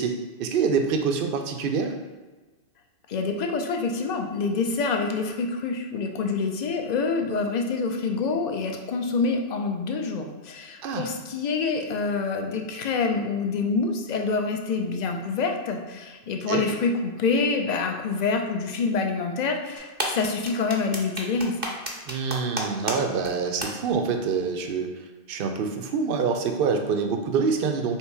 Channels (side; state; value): left; late; 2.6 ms